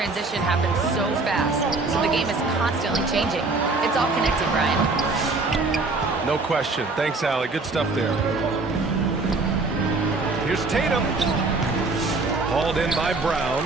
happens so fast, so the game is constantly changing. It's all connected, Brian. No question. Thanks, Allie. Good stuff there. Here's Tatum. Hauled in by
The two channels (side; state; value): left; quieter; 3.6 dB